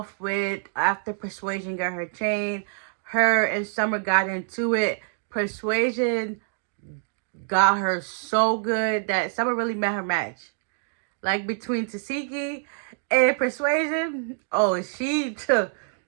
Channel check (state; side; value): silent; left; digital silence